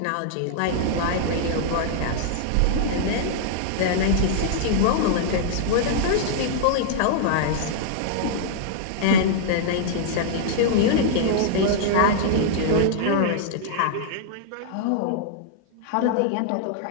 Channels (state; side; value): different; both; correlation -0.01